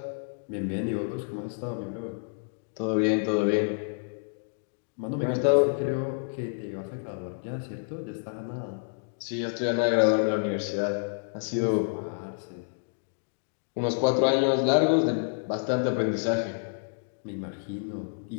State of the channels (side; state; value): right; silent; digital silence